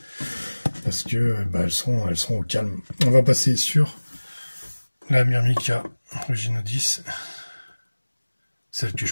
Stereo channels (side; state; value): both; inverted; correlation -1.00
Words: Parce que elles seront au calme. On va passer sur la Myrmica Ruginodis. Celle